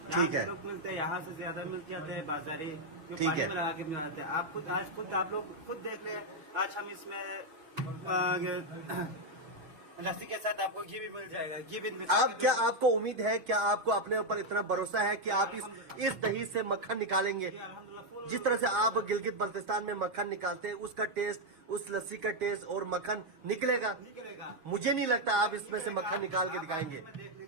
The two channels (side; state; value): left; late; 6.3 ms